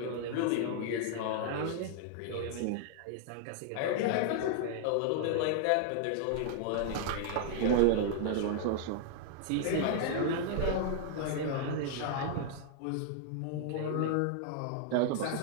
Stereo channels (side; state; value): both; different; correlation -0.01